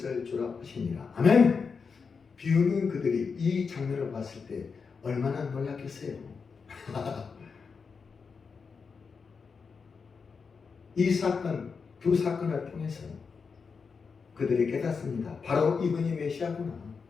주라 하시니라. 아멘. 비웃는 그들이 이 장면을 봤을 때 얼마나 놀랐겠어요. 이 사건, 두 사건을 통해서 그들이 깨닫습니다. 바로 이분이 메시아구나.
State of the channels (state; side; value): quieter; right; 5.4 dB